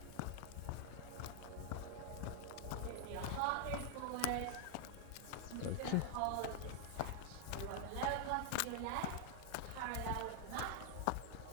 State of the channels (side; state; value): both; different; correlation 0.00